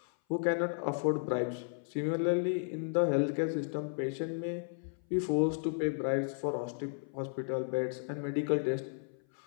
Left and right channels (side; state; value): right; silent; 55 dB below the other